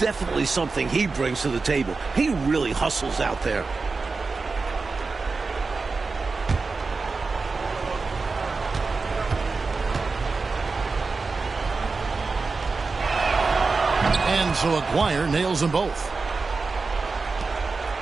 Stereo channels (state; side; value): quieter; left; 4.2 dB